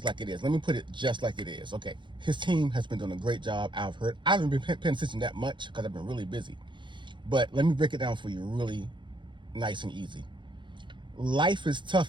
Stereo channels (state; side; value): late; left; 0.23 ms